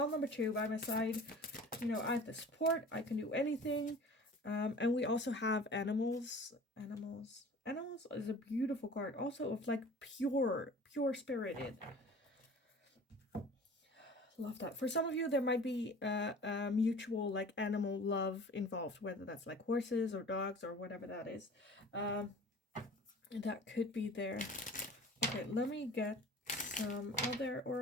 number 2 by my side, you know, I have the support. I can do anything. And we also have animals. Animals is a beautiful card. Also of like pure spirited. Love that. For some of you, there might be a mutual like animal love involved, whether that's like horses or dogs or whatever that is. That could be there. Okay, let me get some other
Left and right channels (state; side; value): normal; both; correlation 0.43